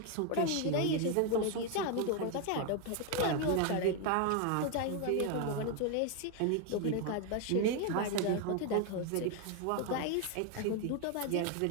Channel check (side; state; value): both; different; correlation 0.01